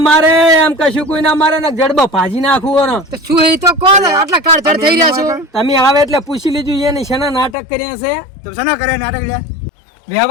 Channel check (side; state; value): right; drops out; at 7.6 s